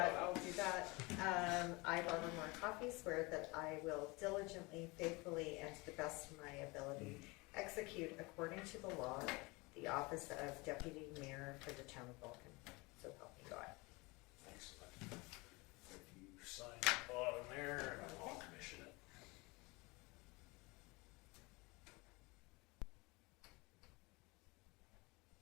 on it. I'll do that. I, Barbara Moore Coffey, swear that I will diligently, faithfully, and to the best of my ability execute according to the law the office of deputy mayor for the town of Vulcan. So help me God. Excellent. If you sign the bottom there, and I'll commission it.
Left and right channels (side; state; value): right; quieter; 25.4 dB